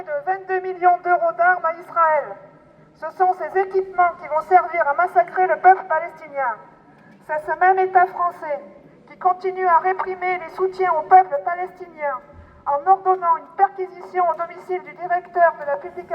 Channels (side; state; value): both; identical; correlation 1.00